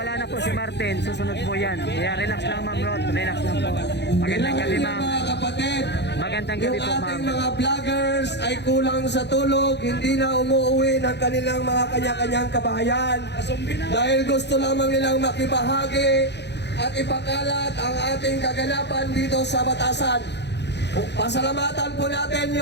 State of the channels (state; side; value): late; right; 0.50 ms